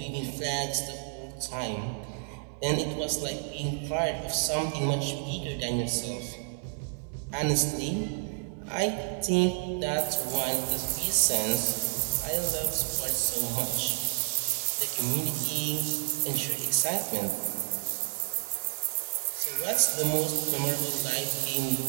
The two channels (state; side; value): silent; left; 57 dB below the other